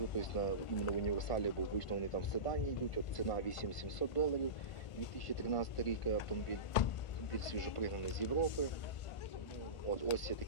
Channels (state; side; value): late; right; 1.4 ms